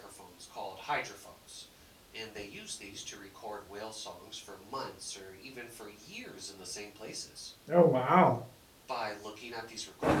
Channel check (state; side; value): identical; both; correlation 1.00